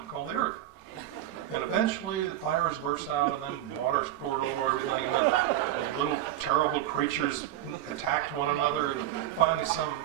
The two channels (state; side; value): quieter; left; 13.1 dB